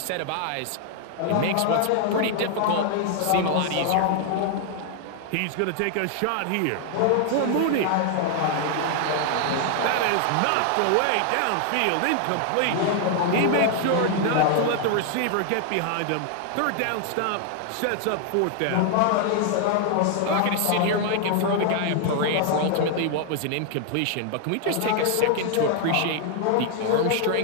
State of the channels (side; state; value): both; different; correlation 0.00